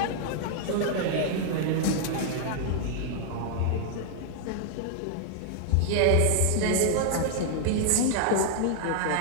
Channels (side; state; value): both; different; correlation -0.01